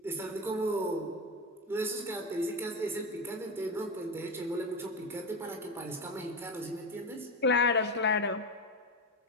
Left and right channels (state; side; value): normal; both; correlation 0.17